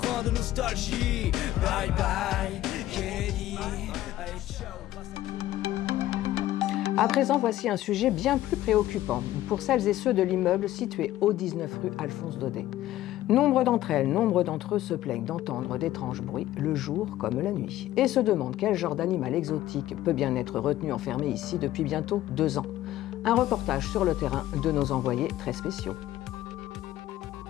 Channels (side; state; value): right; quieter; 14.4 dB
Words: de nostalgie. Bye bye, Kennedy. Allez, ciao, grâce à toi. À présent, voici un sujet bien plus préoccupant pour celles et ceux de l'immeuble situé au 19 rue Alphonse Daudet. Nombre d'entre eux se plaignent d'entendre d'étranges bruits le jour comme la nuit et se demandent quel genre d'animal exotique peut bien être retenu enfermé ici depuis bientôt 2 ans. Un reportage sur le terrain de nos envoyés très spéciaux.